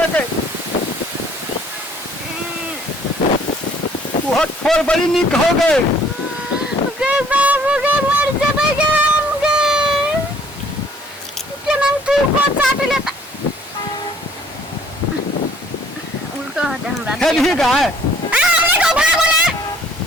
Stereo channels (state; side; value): normal; both; correlation 0.59